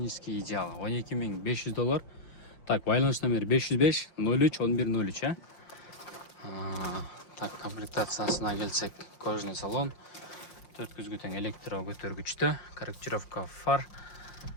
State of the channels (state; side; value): late; right; 5.7 ms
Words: идеал. $12,500. Так, байланыш номер 505 03 1103, Так, комплектациясына келсек, кожаный салон, 4 көзгөтен электро көтөргүчтө, корректировка фар,